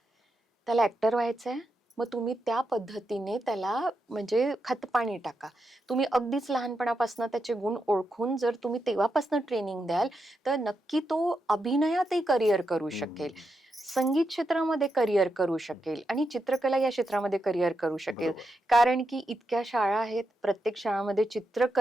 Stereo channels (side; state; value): both; normal; correlation 0.85